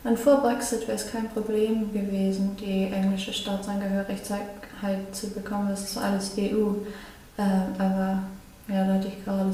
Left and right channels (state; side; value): identical; both; correlation 1.00